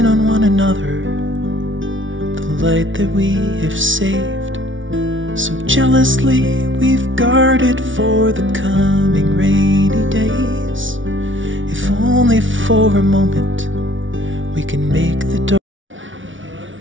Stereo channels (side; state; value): left; late; 0.56 ms